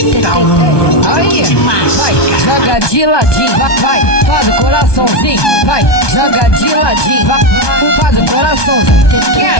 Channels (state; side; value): late; right; 1.2 ms